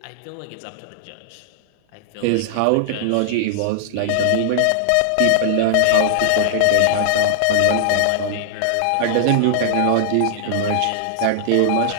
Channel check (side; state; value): both; different; correlation -0.01